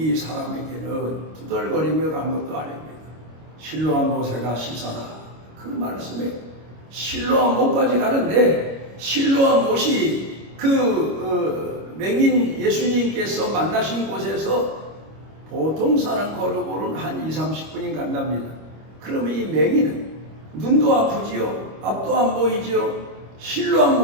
사람에게는 투덜거리며 간 것도 아닙니다. 실로암 모세가 씻어라. 그 말씀에 실로암 못까지 가는데 실로암 못이 맹인 예수님께서 만나신 곳에서 보통 사람 걸어보는 한 20-30분이 간답니다. 그러면 이 맹인은 눈도 아프지요. 앞도 안 보이지요. 실로암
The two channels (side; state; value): left; late; 25 ms